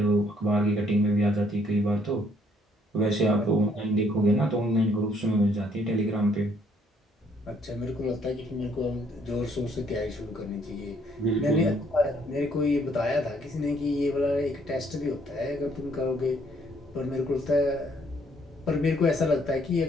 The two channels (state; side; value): normal; both; correlation 0.66